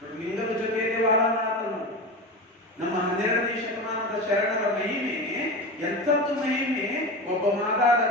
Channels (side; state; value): both; normal; correlation 0.25